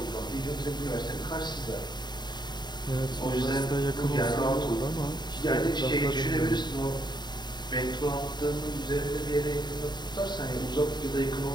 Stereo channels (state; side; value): late; right; 0.21 ms